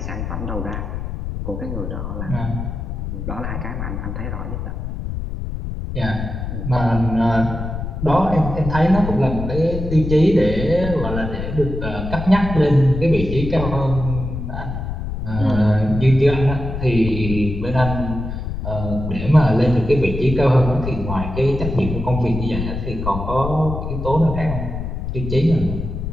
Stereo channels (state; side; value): noise; left; rumble, 5 dB below the sound